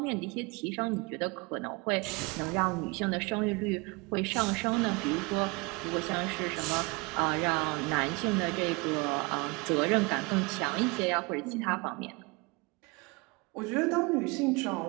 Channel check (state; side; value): quieter; left; 27.6 dB